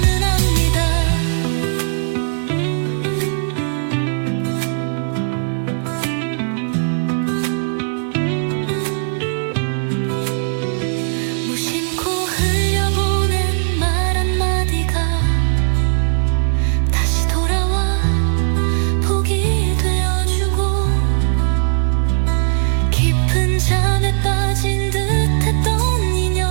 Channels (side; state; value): left; silent; 57 dB below the other